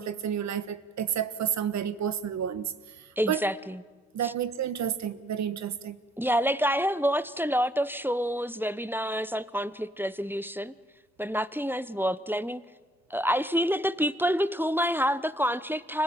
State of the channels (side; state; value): both; normal; correlation 0.62